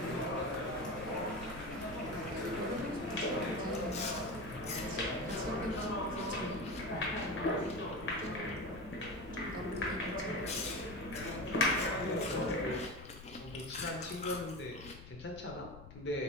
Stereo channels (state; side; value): noise; left; rumble, 15 dB below the sound